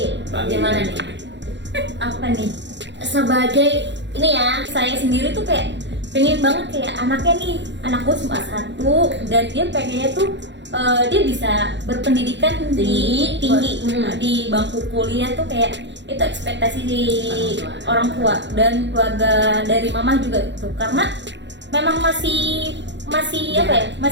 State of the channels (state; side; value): late; left; 0.52 ms